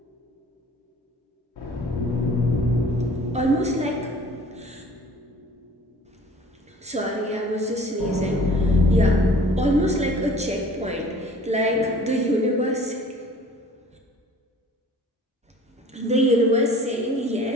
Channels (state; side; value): normal; both; correlation 0.49